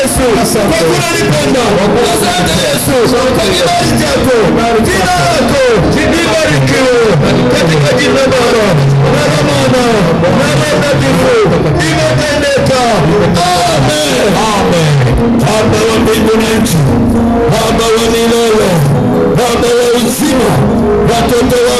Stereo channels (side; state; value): both; identical; correlation 1.00